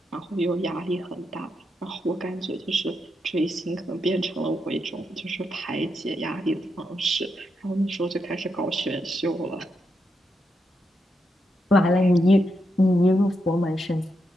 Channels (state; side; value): normal; both; correlation 0.83